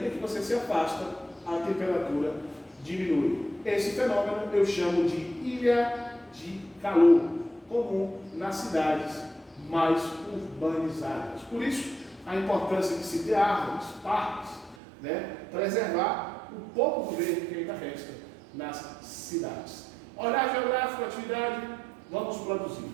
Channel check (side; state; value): left; drops out; at 14.8 s